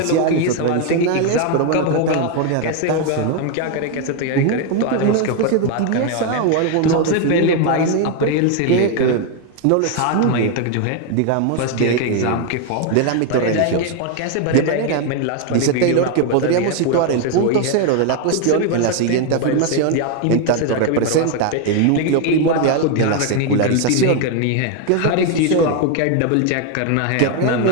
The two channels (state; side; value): different; both; correlation 0.01